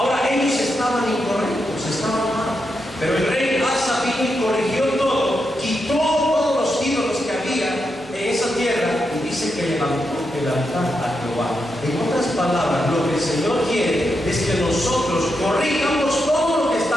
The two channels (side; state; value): both; normal; correlation 0.85